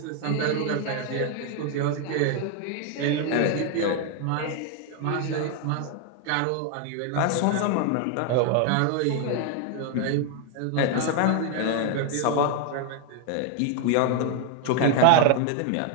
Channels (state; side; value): different; both; correlation 0.01